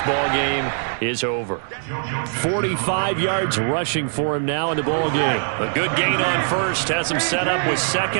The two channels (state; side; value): silent; left; digital silence